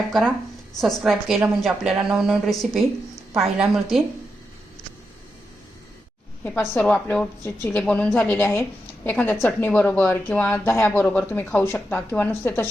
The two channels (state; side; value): normal; both; correlation 0.86